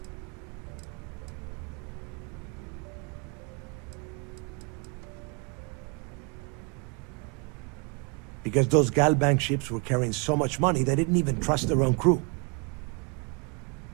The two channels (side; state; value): left; quieter; 33.8 dB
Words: Because those Galbank ships were carrying so much money, they didn't even trust their own crew.